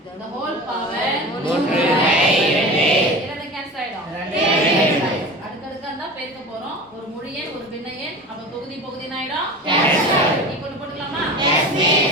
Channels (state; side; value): normal; both; correlation 0.33